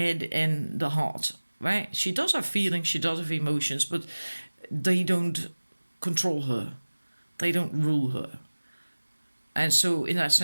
and the heart, right? She does have feelings, she does have emotions, but they don't control her, they don't rule her. And so in that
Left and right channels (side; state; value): both; inverted; correlation -1.00